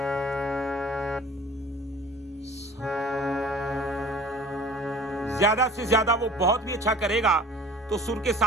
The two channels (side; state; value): both; normal; correlation 0.46